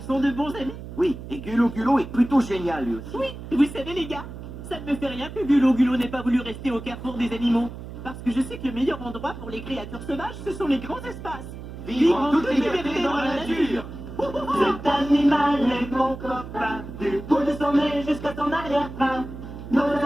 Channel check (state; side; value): noise; right; hum, 11 dB below the sound